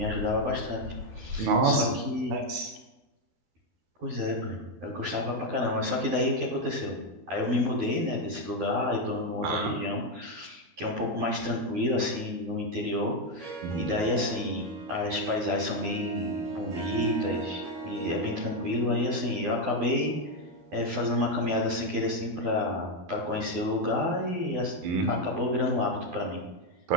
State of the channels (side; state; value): left; late; 12 ms